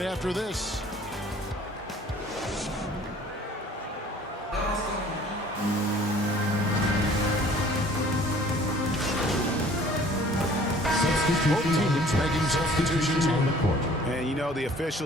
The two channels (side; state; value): both; normal; correlation 0.52